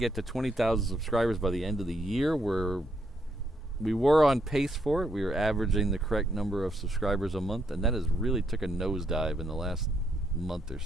to 20,000 subscribers by the end of the year. We were on pace for it. We were averaging the correct number of subscribers a month, and that has really took a nosedive in the last month or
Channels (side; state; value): both; normal; correlation 0.75